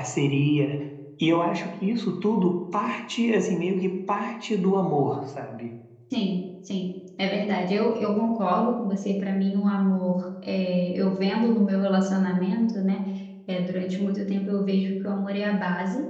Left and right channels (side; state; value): both; identical; correlation 1.00